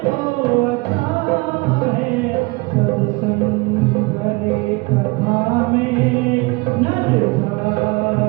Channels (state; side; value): quieter; left; 26.1 dB